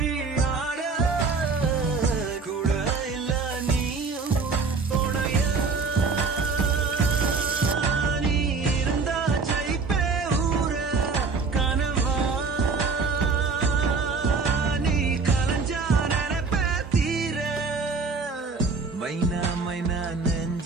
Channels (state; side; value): quieter; left; 4.6 dB